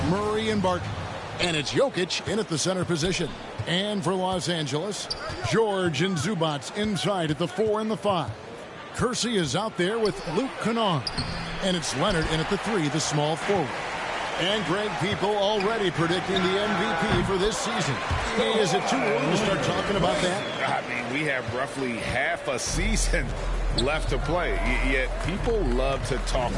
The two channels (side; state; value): both; identical; correlation 1.00